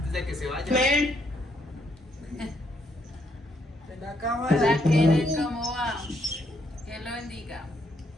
de que se vaya. Amén. En la cámara. Hola, Kenneth, ¿cómo va? Que lo bendiga.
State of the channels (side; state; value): both; normal; correlation 0.73